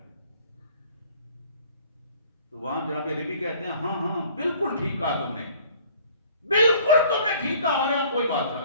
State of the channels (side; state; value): both; inverted; correlation -0.54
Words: تو وہاں جناب ربی کہتے ہیں ہاں ہاں بالکل ٹھیک کہا تم نے، بالکل تم نے ٹھیک کہا، ہمارے یہاں کوئی بادشاہ